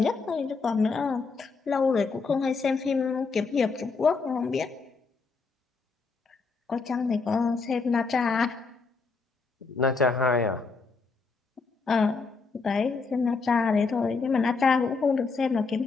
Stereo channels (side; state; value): right; quieter; 4.4 dB